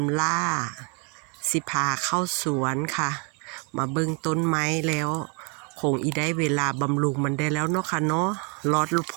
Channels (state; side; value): quieter; left; 35.3 dB